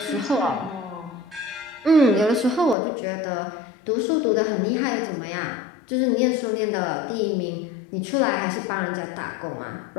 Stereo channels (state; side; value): drops out; right; at 2.8 s